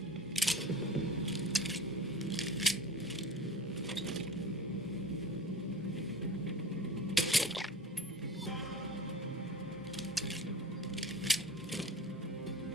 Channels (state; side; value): normal; both; correlation 0.38